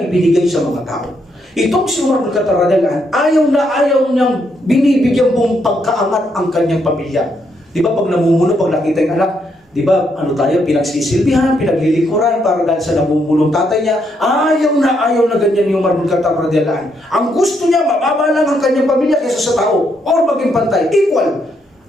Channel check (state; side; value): normal; both; correlation 0.76